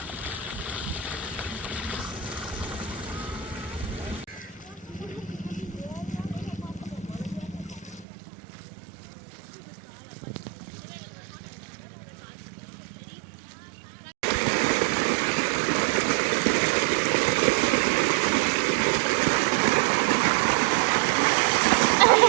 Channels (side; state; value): left; drops out; at 8.1 s